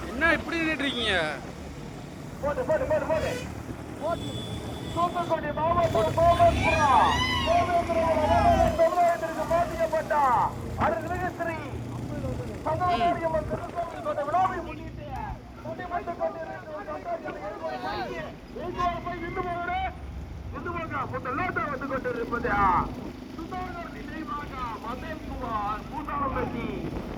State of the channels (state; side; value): identical; both; correlation 1.00